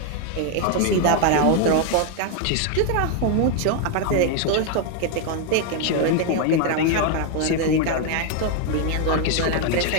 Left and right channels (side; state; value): both; different; correlation 0.01